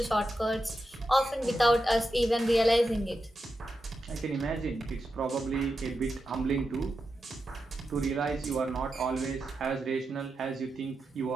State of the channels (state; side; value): normal; both; correlation 0.88